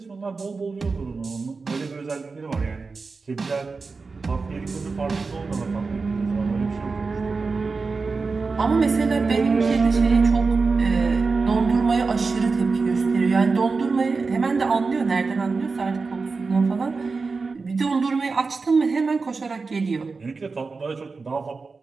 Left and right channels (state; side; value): quieter; left; 4.3 dB